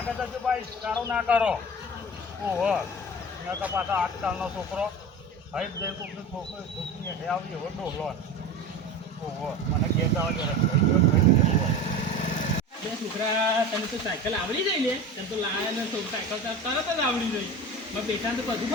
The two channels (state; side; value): normal; both; correlation 0.32